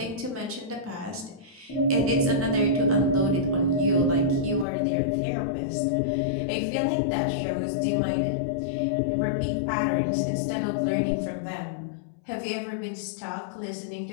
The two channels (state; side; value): drops out; right; at 4.7 s